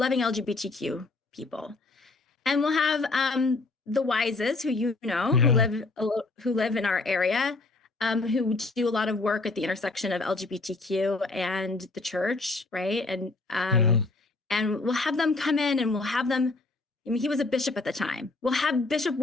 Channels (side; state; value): right; quieter; 3.4 dB